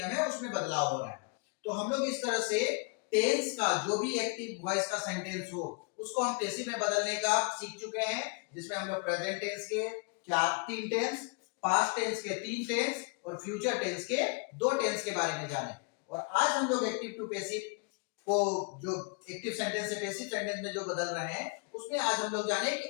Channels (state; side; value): quieter; right; 34.4 dB